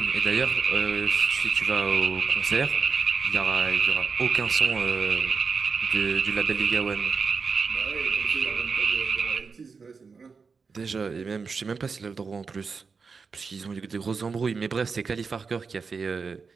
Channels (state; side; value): quieter; left; 5.1 dB